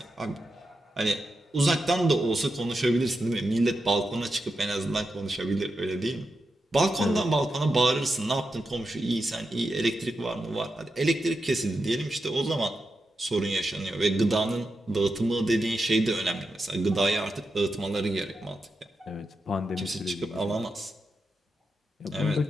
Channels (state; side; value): normal; both; correlation 0.88